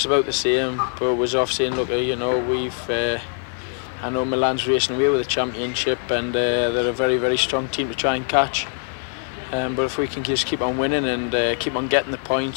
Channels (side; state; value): right; silent; 64 dB below the other